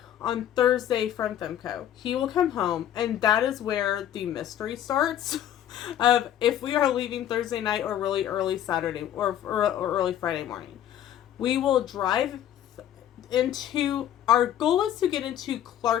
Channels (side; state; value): right; quieter; 11.0 dB